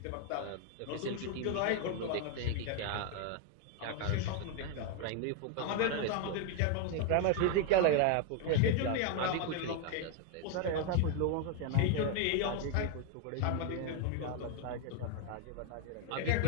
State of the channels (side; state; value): both; different; correlation 0.01